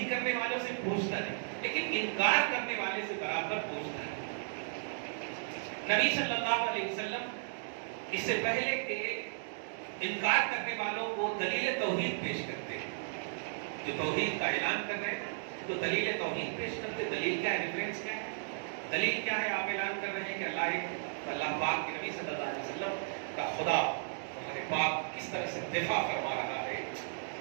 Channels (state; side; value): silent; left; digital silence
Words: کرنے والوں سے پوچھتا نہیں, لیکن انکار کرنے والے سے برابر پوچھتا ہے. نبی صلی اللہ علیہ وسلم اس سے پہلے کہ انکار کرنے والوں کو دلیل توحید پیش کرتے ہیں, جو توحید کا اعلان کر رہے ہیں تو دلیل توحید پیش کرتے. دلیل کیا ہے, ریفرنس کیا ہے, دلیل کیا ہے؟ آپ اعلان کر رہے ہیں کہ اللہ پاک کے نبی صلی اللہ علیہ وسلم کا خدا ہمارے پاک کس طرح سے دفاع فرما رہا ہے.